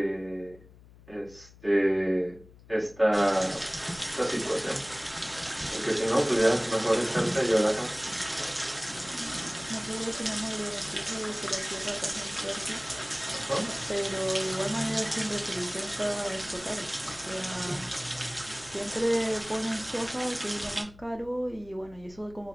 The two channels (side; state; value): left; noise; hum, 22 dB below the sound